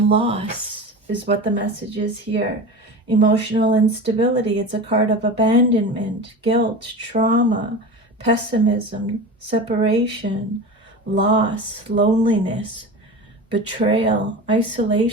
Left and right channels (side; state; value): both; normal; correlation 0.30